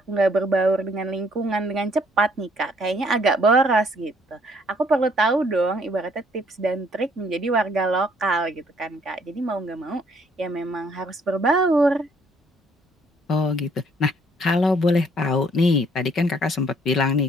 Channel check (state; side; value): normal; both; correlation 0.64